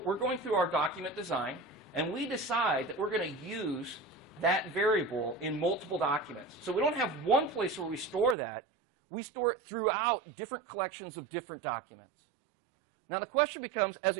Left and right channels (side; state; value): left; drops out; at 8.3 s